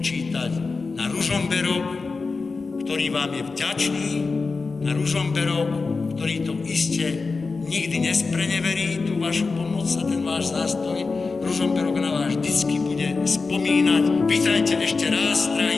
na Ružomberok, ktorý vám je vďačný, na Ružomberok, ktorý to iste nikdy nespreneverí, tú vašu pomoc a ten váš zástoj. Ružomberok na vás vždycky bude spomínať. Vítajte ešte raz,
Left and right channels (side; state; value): right; quieter; 4.2 dB